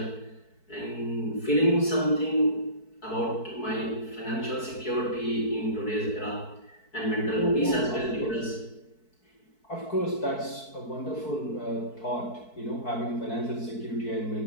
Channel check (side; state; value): right; late; 4.6 ms